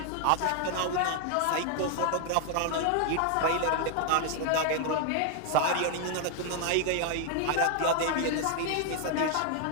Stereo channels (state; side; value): different; both; correlation 0.00